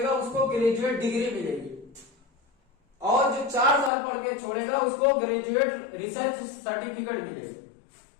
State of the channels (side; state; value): right; drops out; at 3.9 s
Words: उसको ग्रेजुएट डिग्री मिलेगी, और जो 4 साल पढ़ के छोड़ेगा उसको ग्रेजुएट रिसर्च सर्टिफिकेट मिलेगा।